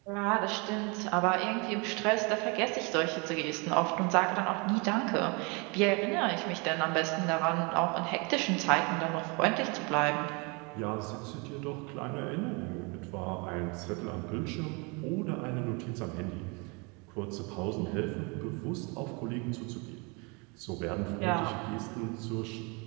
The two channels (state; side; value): quieter; left; 30.6 dB